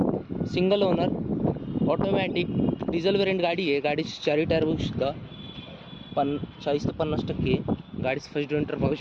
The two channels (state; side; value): identical; both; correlation 1.00